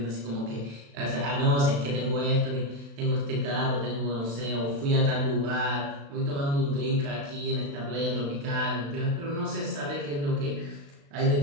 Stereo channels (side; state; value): left; late; 36 ms